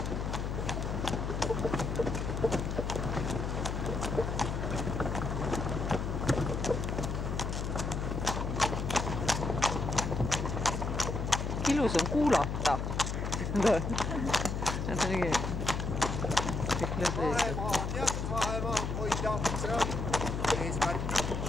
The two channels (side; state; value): left; noise; hum, 2 dB below the sound